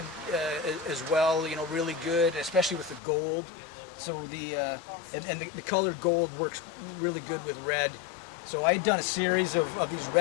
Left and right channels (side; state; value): right; drops out; at 3.0 s